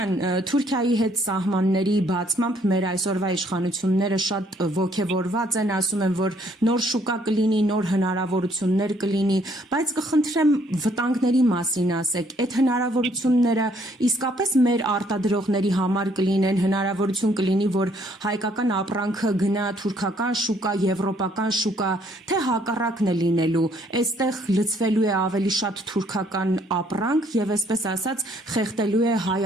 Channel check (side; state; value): both; normal; correlation 0.66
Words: Թուրքիայի հետ սահմանների բացմամբ մեր այսօրվա իշխանությունները շատ ոգևորված են, ասում են, որ նոր շուկա կլինի, նոր հնարավորություններ կլինի, բայց կխնդրեմ վտանգների մասին ասեք, այդ հնարավորությունները իսկապես մեր արտադրողների համար կլինեն, հնարավորություն կլինի, որ հայկական ապրանքը գնա թուրքական շուկա, եվրոպական շուկա, թե հակառակն է լինելու, այստեղ լցվելու է ավելի շատ թուրքական ապրանք եւ այսպես ասած խեղդելու է հայ